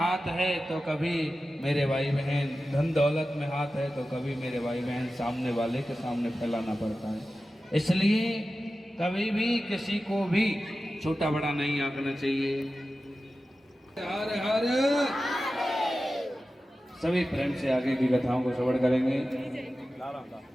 है तो कभी मेरे भाई बहन धन दौलत में हाथ है तो कभी मेरे भाई बहन सामने वाले के सामने फैलाना पड़ता है। इसलिए कभी भी किसी को भी छोटा बड़ा नहीं आंकना चाहिए। हर हर सभी प्रेम से आगे की कथाओं को श्रवण करेंगे।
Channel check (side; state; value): both; normal; correlation 0.94